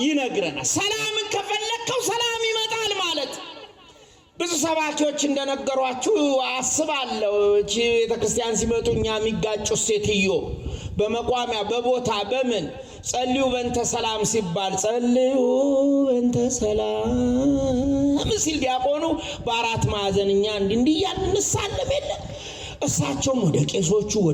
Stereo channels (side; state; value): both; identical; correlation 1.00